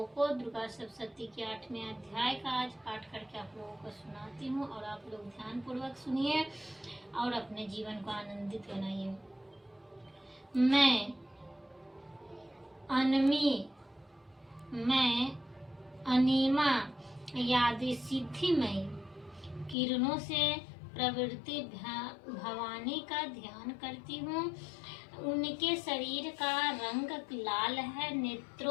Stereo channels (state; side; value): drops out; right; at 19.8 s